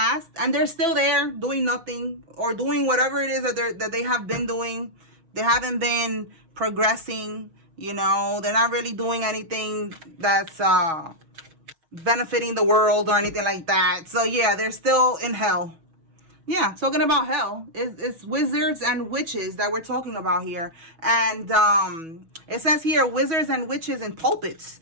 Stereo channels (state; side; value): late; left; 6.2 ms